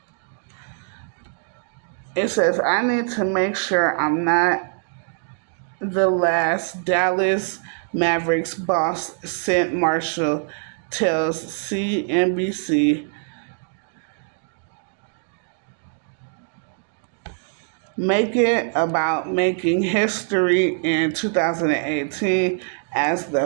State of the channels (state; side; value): silent; left; 59 dB below the other